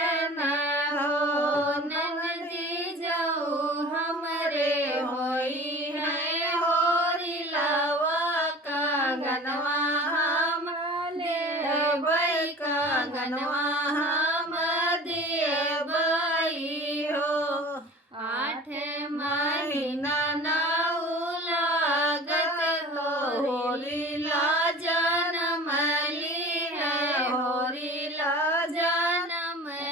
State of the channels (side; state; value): both; normal; correlation 0.41